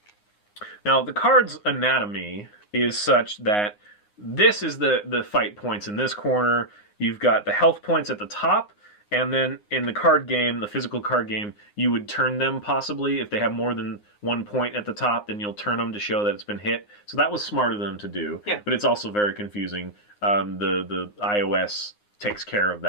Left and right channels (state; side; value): late; right; 9.7 ms